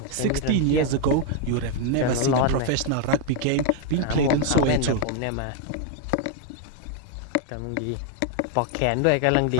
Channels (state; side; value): different; both; correlation 0.00